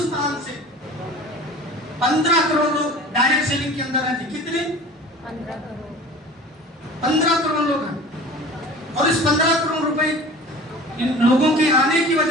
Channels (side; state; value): both; normal; correlation 0.40